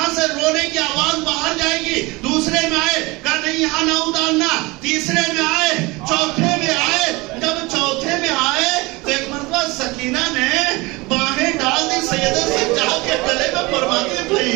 سے رونے کی آواز باہر جائے گی. دوسرے میں آئے, کہا نہیں یہاں نہ اتارنا. تیسرے میں آئے, چوتھے میں آئے. جب چوتھے میں آئے تو ایک مرتبہ سکینہ نے باہیں ڈال دی سید سجاد کے گلے میں. فرماتے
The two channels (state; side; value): quieter; left; 23.6 dB